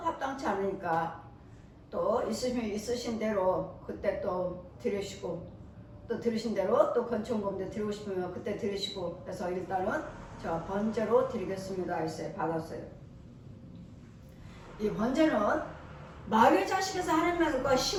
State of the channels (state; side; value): identical; both; correlation 1.00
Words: 않으니까 또 있으신 대로 그때 또 드리시고 또 들으신 대로 또 건축금도 드리고 싶으면 그때 드리시고 그래서 일단은 제가 번제로 드리겠습니다 했어요. 받았어요. 이 번제는 마귀의 자식에서 하나님과